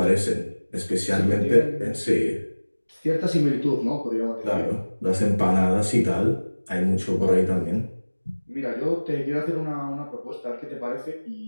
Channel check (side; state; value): both; inverted; correlation -1.00